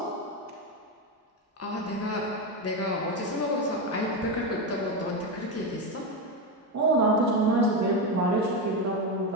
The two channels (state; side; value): normal; both; correlation 0.13